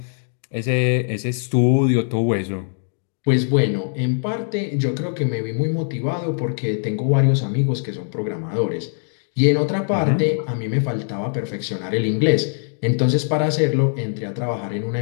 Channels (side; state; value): right; silent; digital silence